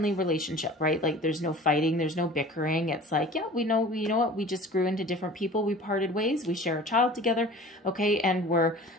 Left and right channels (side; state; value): both; normal; correlation 0.43